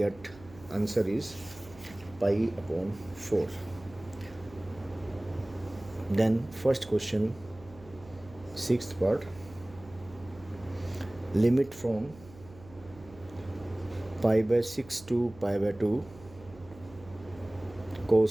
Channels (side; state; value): right; noise; hum, 20 dB below the sound